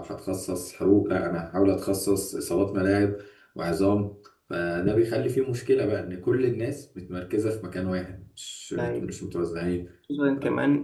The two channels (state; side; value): identical; both; correlation 1.00